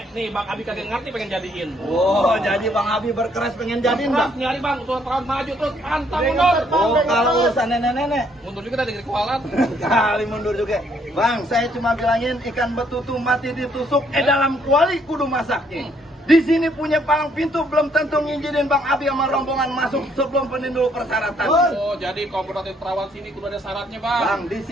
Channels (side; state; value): both; normal; correlation 0.68